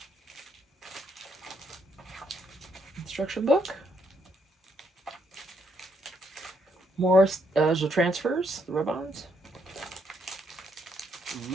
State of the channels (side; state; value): both; normal; correlation 0.74